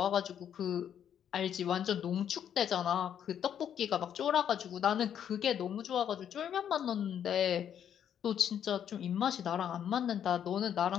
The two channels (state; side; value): quieter; right; 9.2 dB